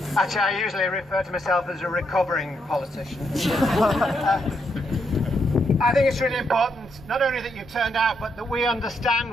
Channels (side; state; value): both; normal; correlation 0.78